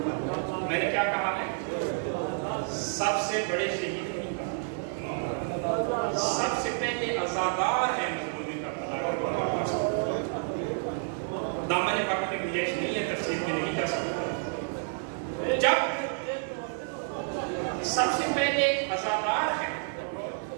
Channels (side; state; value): left; silent; 58 dB below the other